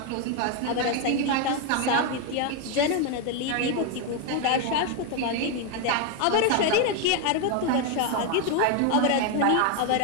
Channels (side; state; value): both; different; correlation 0.01